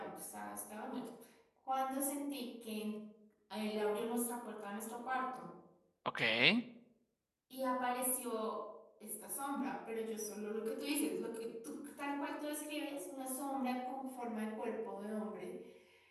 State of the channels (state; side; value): identical; both; correlation 1.00